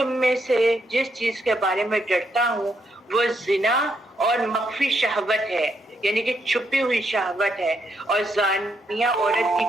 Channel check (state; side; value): normal; both; correlation 0.77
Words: میں سے جس چیز کے بارے میں ڈرتا ہوں وہ زنا اور مخفی شہوت ہے یعنی کہ چھپی ہوئی شہوت ہے اور زانیہ عورت کی